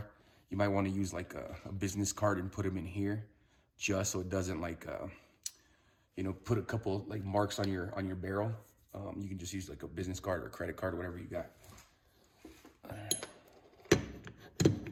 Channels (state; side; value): identical; both; correlation 1.00